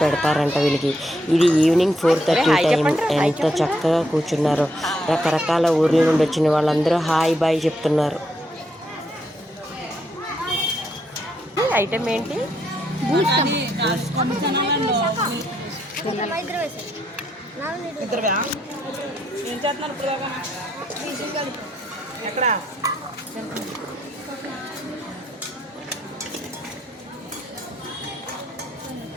పెడతారంట వీళ్ళకి. ఇది ఈవినింగ్ 4:30 టైం. ఎంత చక్కగా కూర్చున్నారో. రకరకాల ఊర్ల నుండి వచ్చిన వాళ్ళందరూ హాయ్ బాయ్ చెప్తున్నారు. ఐటమ్ ఏంటి?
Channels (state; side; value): normal; both; correlation 0.76